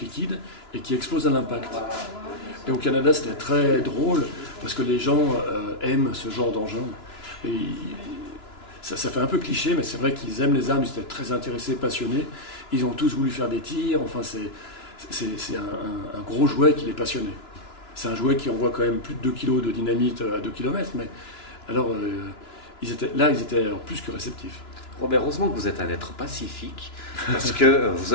liquides et qui explosent à l'impact. Et au Canada c'était très drôle parce que les gens aiment ce genre d'engin. Et ça fait un peu cliché, mais c'est vrai qu'ils aiment les armes, ils étaient très intéressés, passionnés. Ils ont tous voulu faire des tirs, enfin c'est un gros jouet qui les passionnait. C'est un jouet qui envoie quand même plus de 2 kg de dynamite à 2 km, mais alors ils étaient plus que réceptifs. Robert, heureusement que vous êtes un être pacifique, parce que vous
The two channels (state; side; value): late; right; 2.9 ms